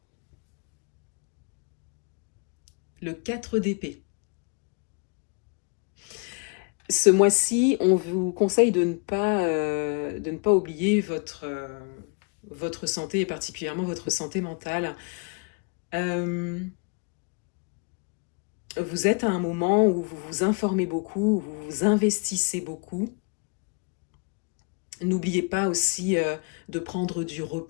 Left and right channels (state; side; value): quieter; right; 34.5 dB